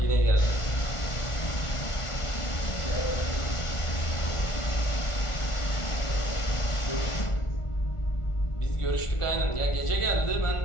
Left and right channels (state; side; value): late; right; 1.4 ms